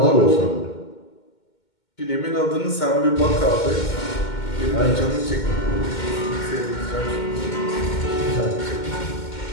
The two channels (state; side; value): late; right; 2.2 ms